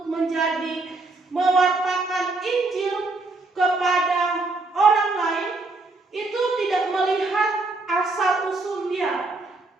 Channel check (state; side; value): quieter; left; 3.4 dB